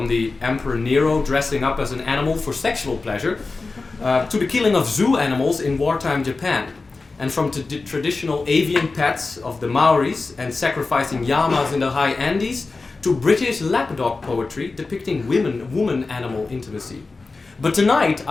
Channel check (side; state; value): right; quieter; 3.8 dB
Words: the Emperor Nero dressing up as an animal for sexual pleasure, to the killing of zoo animals in wartime Japan, and from traditional avian pets of the Maoris and sacrificing llamas in the high Andes, to British lapdog poetry depicting woman-animal intimacy. But tonight